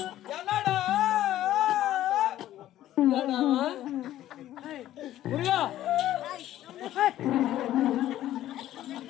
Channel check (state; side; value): quieter; right; 13.2 dB